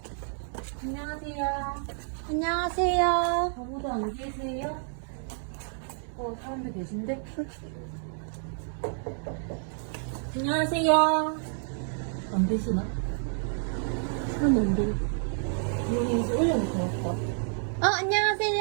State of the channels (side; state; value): left; silent; 58 dB below the other